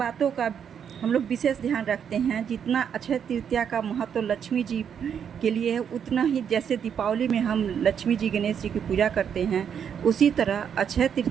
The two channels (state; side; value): quieter; left; 8.0 dB